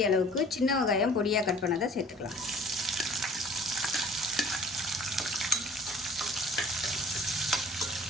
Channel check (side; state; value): both; normal; correlation 0.50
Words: அளவுக்கு சின்ன வெங்காயம் பொடியாக கட் பண்ணதை சேர்த்துக்கலாம்.